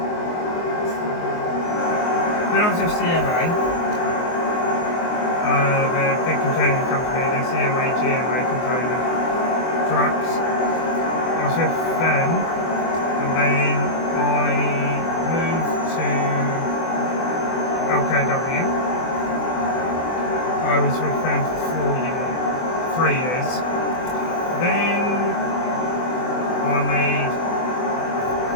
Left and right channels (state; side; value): late; right; 24 ms